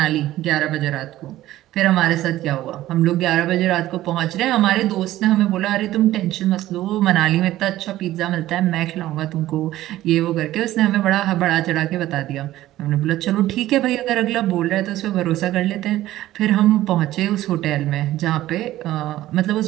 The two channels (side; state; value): left; quieter; 14.9 dB